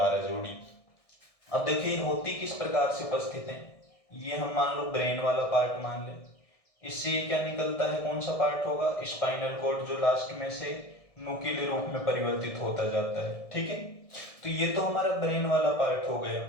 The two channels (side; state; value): right; late; 1.6 ms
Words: जोड़ी। अब देखिए होती किस प्रकार से उपस्थित है। ये हम मान लो ब्रेन वाला पार्ट मान ले, इससे क्या निकलता है? कौन सा पार्ट होगा? स्पाइनल कॉर्ड, जो लास्ट में से नुकीले रूप में परिवर्तित होता जाता है। ठीक है, तो ये तो हमारा ब्रेन वाला पार्ट हो गया।